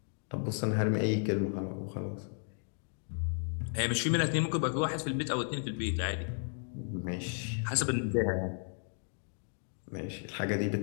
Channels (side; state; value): right; silent; 55 dB below the other